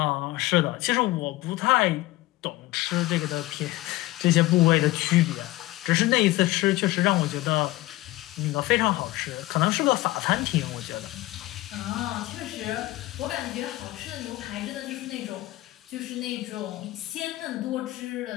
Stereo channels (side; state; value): right; quieter; 18.2 dB